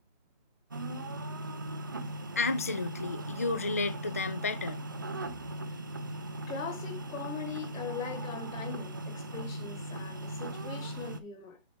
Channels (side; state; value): both; inverted; correlation -0.43